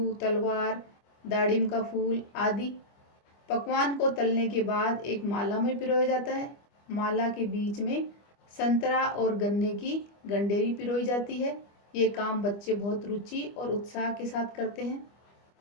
तलवार, दाड़िम का फूल आदि। पकवान को तलने के बाद एक माला में पिरोया जाता है। माला के बीच में संतरा और गन्ने की गंडेरी पिरोई जाती है। ये काम बच्चे बहुत रुचि और उत्साह के साथ करते हैं।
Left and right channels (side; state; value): right; late; 25 ms